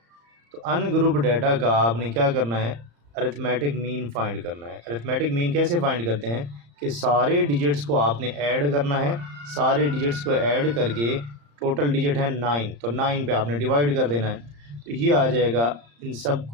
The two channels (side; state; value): left; late; 35 ms